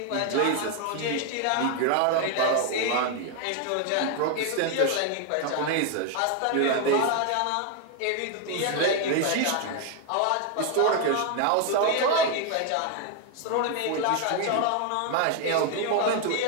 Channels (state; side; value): different; both; correlation 0.01